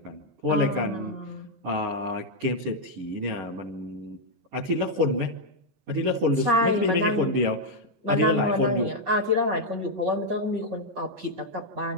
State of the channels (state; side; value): late; left; 15 ms